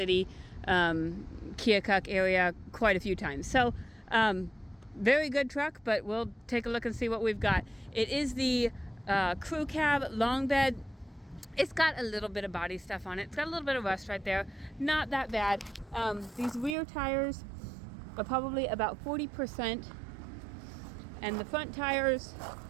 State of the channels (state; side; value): drops out; left; at 16.8 s